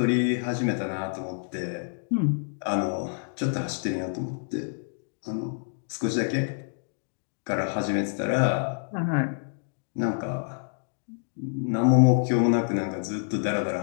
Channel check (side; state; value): right; silent; digital silence